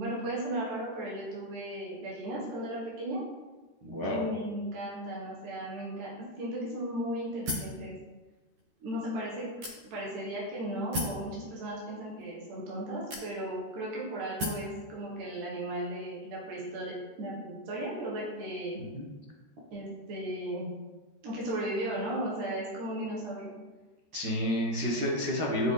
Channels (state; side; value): late; left; 13 ms